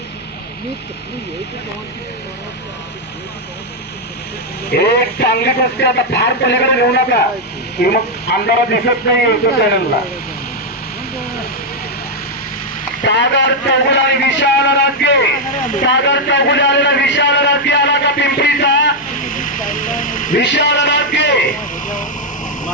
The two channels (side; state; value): both; normal; correlation 0.00